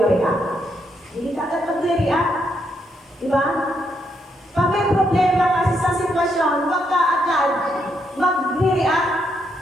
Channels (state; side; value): normal; both; correlation 0.78